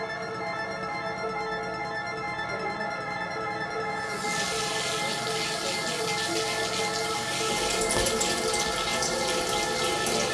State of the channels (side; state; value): both; identical; correlation 1.00